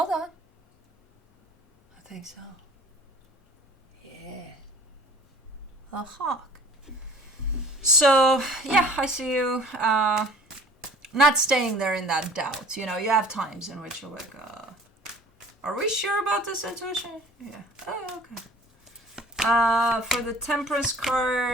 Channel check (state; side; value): normal; both; correlation 0.49